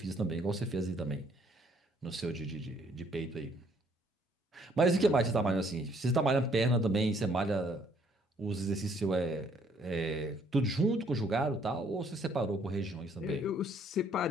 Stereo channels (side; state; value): both; normal; correlation 0.64